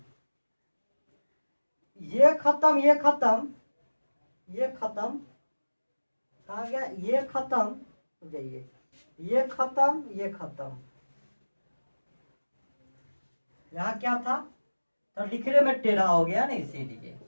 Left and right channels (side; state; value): both; inverted; correlation -1.00